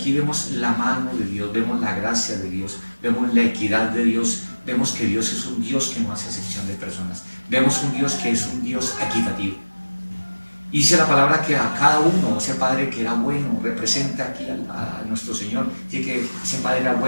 vemos la mano de Dios, vemos la gracia de Dios, vemos la equidad de Dios, vemos que Dios es un Dios que no hace acepción de personas, vemos un Dios que es un Dios equitativo. Y dice la palabra que a cada uno, ese Padre que era bueno, representa aquí a nuestro Señor. Dice que ese Padre era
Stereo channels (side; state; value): both; inverted; correlation -1.00